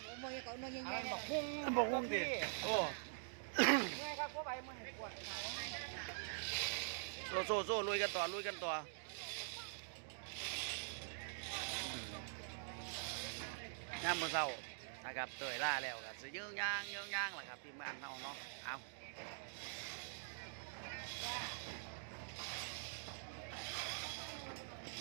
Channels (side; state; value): left; silent; digital silence